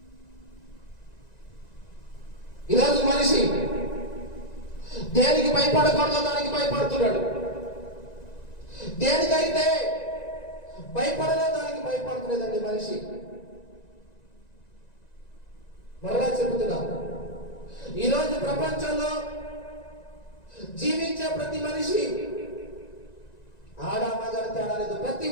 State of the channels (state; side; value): late; right; 1.9 ms